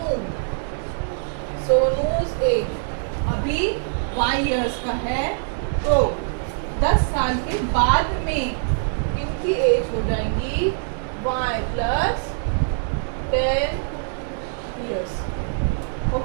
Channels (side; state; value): left; silent; digital silence